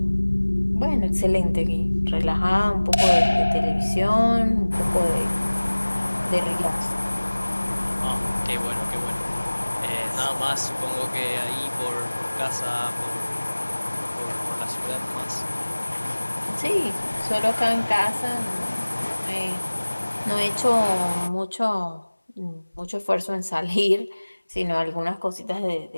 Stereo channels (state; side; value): inverted; both; correlation -1.00